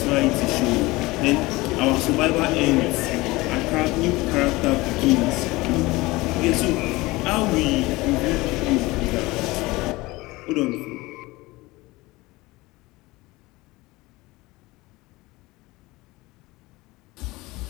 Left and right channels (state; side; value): quieter; right; 21.1 dB